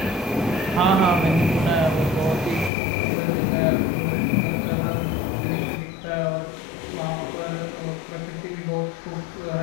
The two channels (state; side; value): drops out; right; at 2.7 s